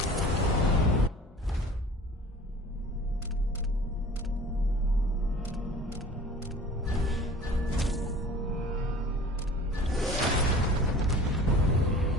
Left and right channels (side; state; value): both; normal; correlation 0.44